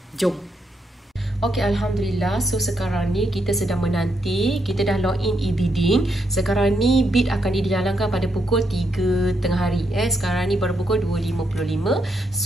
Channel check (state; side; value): normal; both; correlation 0.80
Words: Jom. Okey, Alhamdulillah. So, sekarang ni kita sedang menanti. Kita dah login e-bidding. Sekarang ni bid akan dijalankan pada pukul 3 tengah hari. Sekarang ni baru pukul 2.55.